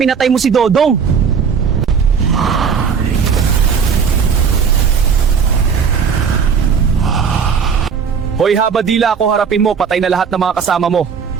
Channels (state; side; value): quieter; left; 6.4 dB